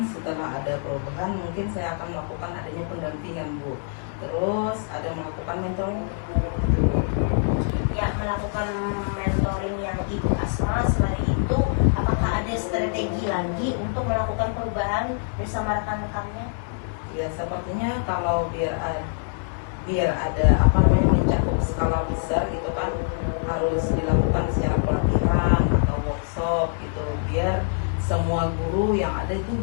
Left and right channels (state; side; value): silent; right; 59 dB below the other